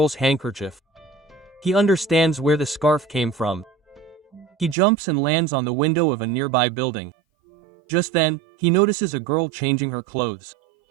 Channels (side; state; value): left; drops out; at 4.8 s